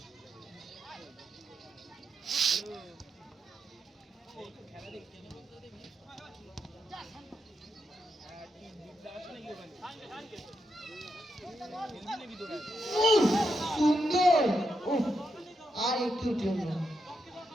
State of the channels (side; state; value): both; normal; correlation 0.83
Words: সুন্দর, আর একটু জন্য